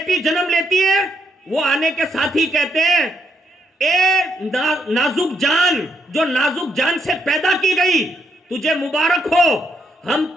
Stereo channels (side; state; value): both; normal; correlation 0.77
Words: جنم لیتی ہے وہ آنے کے ساتھ ہی کہتے ہیں اے نازک جان جو نازک جان سے پیدا کی گئی تجھے مبارک ہو، ہم